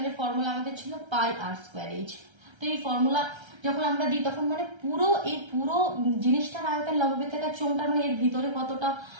ফর্মুলা আমাদের ছিল পাই আর স্কোয়ার এইচ। তো এই ফর্মুলা যখন আমরা দিই তখন মানে পুরো জিনিসটার আয়তন, লম্ববৃত্তাকার চোঙটার মানে এর ভিতরে কতটা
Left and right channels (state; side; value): late; left; 1.3 ms